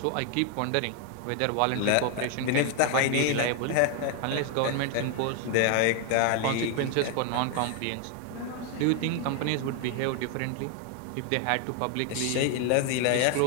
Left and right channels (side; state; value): both; different; correlation 0.01